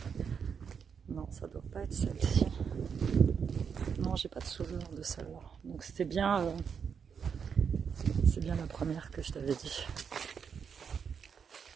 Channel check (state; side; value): quieter; left; 6.7 dB